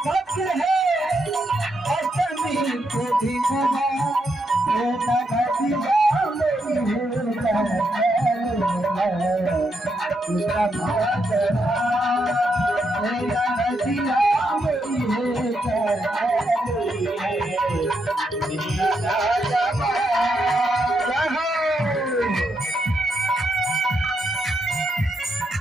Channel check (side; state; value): both; normal; correlation 0.80